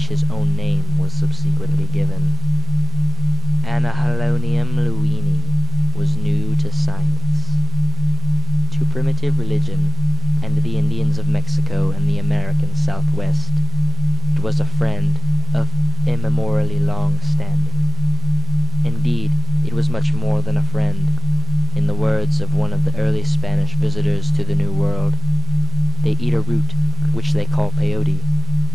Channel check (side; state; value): both; normal; correlation 0.93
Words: his own name was subsequently given. Anahalonium lewinii was new to science, to primitive religion, and the Indians of Mexico and the American Southwest. It was a friend of immemorially long standing. Indeed, it was much more than a friend. In the words of one of the early Spanish visitors to the New World, they eat a root which they call peyote,